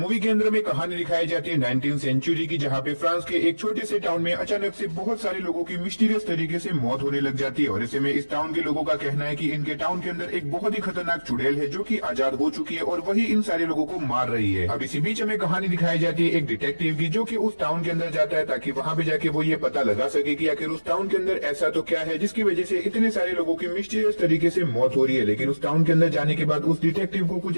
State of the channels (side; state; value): both; inverted; correlation -1.00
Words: के अंदर में कहानी दिखाई जाती है 19th सेंचुरी की, जहाँ पे फ्रांस के एक छोटे से टाउन में अचानक से बहुत सारे लोगों की मिस्टीरियस तरीके से मौत होने लग जाती है। और ऐसे में इस टाउन के लोगों का कहना है कि इनके टाउन के अंदर एक बहुत ही खतरनाक चुड़ैल है, जो कि आजाद हो चुकी है और वही इन सारे लोगों को मार रही है। अब इसी बीच हमें कहानी दिखाई जाती है एक डिटेक्टिव की, जो कि उस टाउन के अंदर जाता है ताकि वहां पे जाके वो ये पता लगा सके कि आखिर उस टाउन के अंदर ऐसा तो क्या है जिसकी वजह से इतने सारे लोगों की मिस्टीरियस तरीके से मौत हो रही है। लेकिन उस टाउन के अंदर जाने के बाद उस डिटेक्टिव को